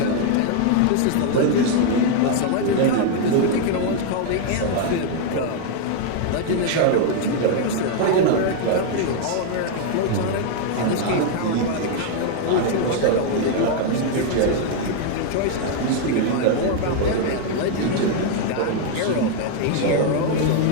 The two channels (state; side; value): different; both; correlation 0.00